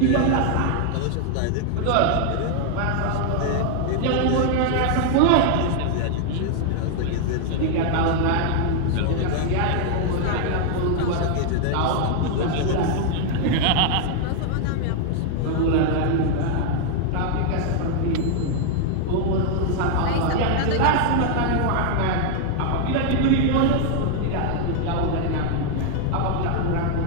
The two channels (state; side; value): different; both; correlation 0.00